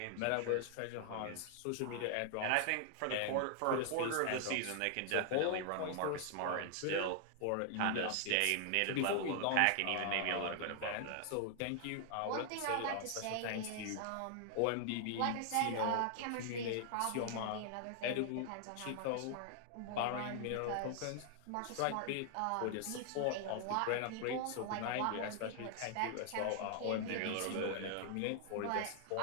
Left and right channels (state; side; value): different; both; correlation 0.00